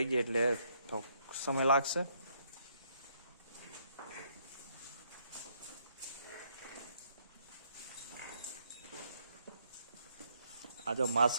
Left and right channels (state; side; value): inverted; both; correlation -0.71